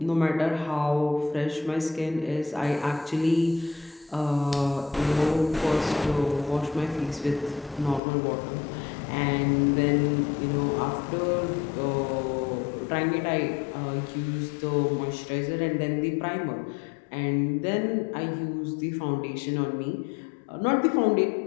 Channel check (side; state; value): right; drops out; at 8.0 s